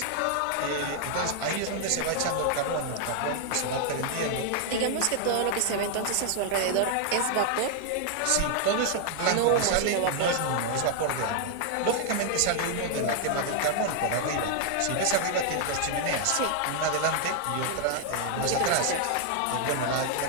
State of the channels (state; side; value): different; both; correlation 0.00